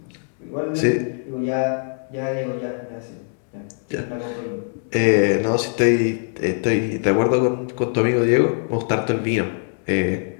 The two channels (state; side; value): silent; right; digital silence